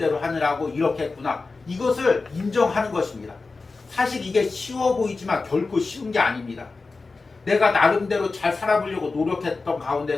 하느라고 이렇게 했구나. 이것을 인정하는 것입니다. 사실 이게 쉬워 보이지만 결코 쉬운 게 아닙니다. 내가 나름대로 잘 살아보려고 노력했던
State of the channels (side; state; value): right; quieter; 3.9 dB